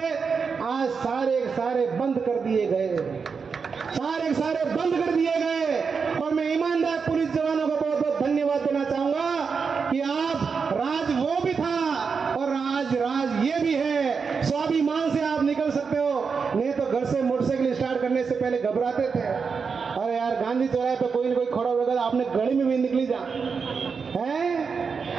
आज सारे बंद कर दिए गए, सारे बंद कर दिए गए। और मैं ईमानदार पुलिस जवानों को बहुत बहुत धन्यवाद देना चाहूंगा कि आप राज वो भी था और राज ये भी है। स्वाभिमान से आप निकल सकते हो, नहीं तो घर से मोटरसाइकिल स्टार्ट करने से पहले घबराते थे, अरे यार गांधी चौराहे पे कोई न कोई खड़ा होगा, आपने गली में भी निकली जा है।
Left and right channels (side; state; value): left; quieter; 5.5 dB